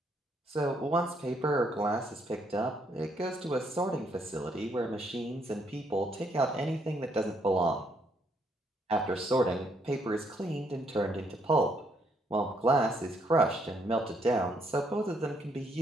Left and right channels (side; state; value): both; normal; correlation 0.72